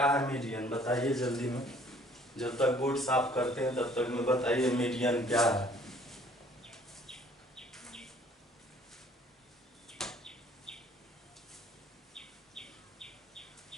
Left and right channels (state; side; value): normal; both; correlation 0.57